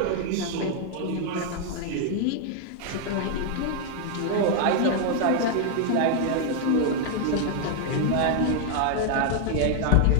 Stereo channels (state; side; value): different; both; correlation 0.00